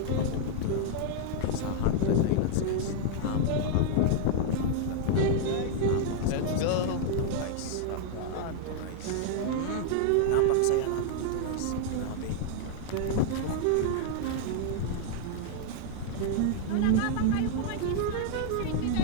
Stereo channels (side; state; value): both; different; correlation -0.01